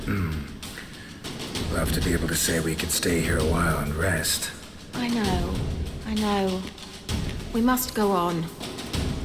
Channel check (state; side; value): identical; both; correlation 1.00